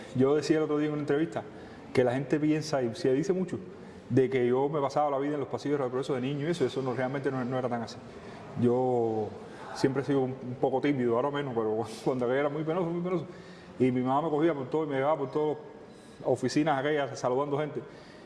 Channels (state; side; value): identical; both; correlation 1.00